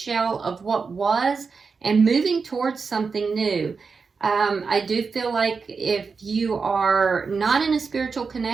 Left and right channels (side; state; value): left; quieter; 5.0 dB